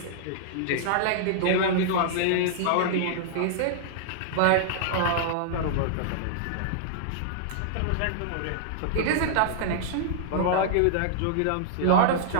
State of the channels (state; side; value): different; both; correlation -0.01